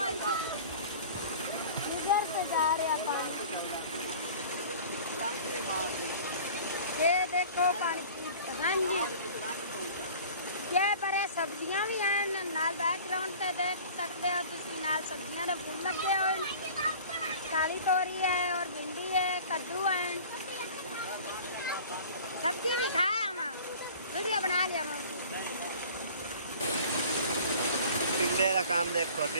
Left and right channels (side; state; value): both; inverted; correlation -0.44